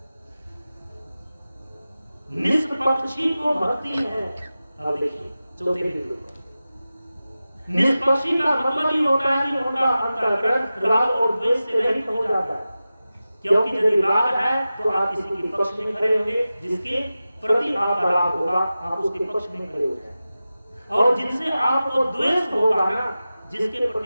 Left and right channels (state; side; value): inverted; both; correlation -0.95